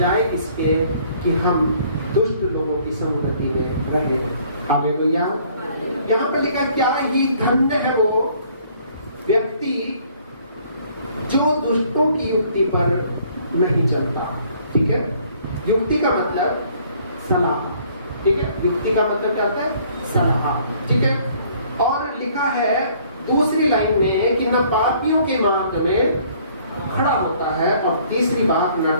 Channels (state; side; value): inverted; both; correlation -0.60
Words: इसके कि हम दुष्ट लोगों की संगति में रहे। हालेलुया। यहाँ पे लिखा क्या ही धन्य है वो व्यक्ति जो दुष्टों की युक्ति पर नहीं चलता। ठीक है, युक्ति का मतलब सलाह। ठीक है, युक्ति का मतलब क्या होता है? सलाह। ठीक है, और लिखा है दूसरी लाइन में कि न पापियों के मार्ग में खड़ा होता है, और तीसरी बात न